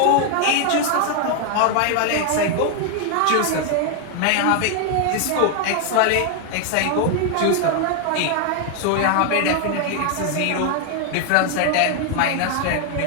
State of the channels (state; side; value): different; both; correlation 0.00